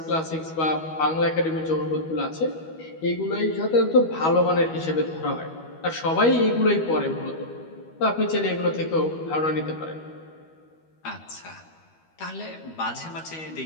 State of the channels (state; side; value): late; right; 12 ms